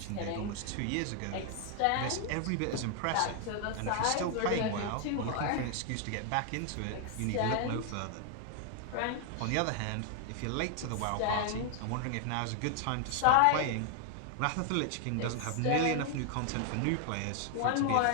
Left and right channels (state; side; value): different; both; correlation 0.00